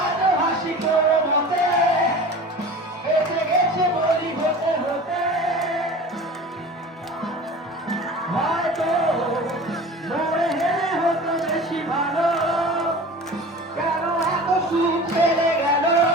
আজো হাসি করো মতে, বেঁচে গেছে বলি হতে হতে। হয়তো মরে হেরে হতো বেশি ভালো, কেন এত সুখ ফেলে গেল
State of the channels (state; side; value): normal; both; correlation 0.38